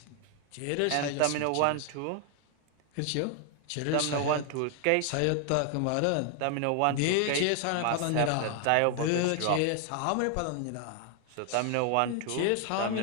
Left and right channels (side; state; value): both; different; correlation 0.00